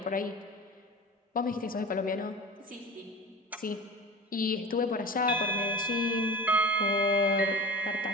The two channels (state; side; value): normal; both; correlation 0.34